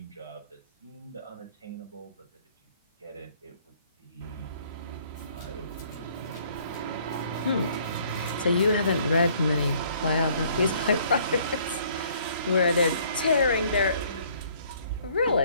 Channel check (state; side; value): inverted; both; correlation -0.61